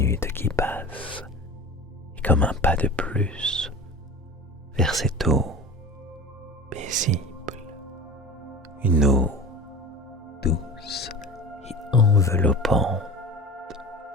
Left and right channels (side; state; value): both; normal; correlation 0.34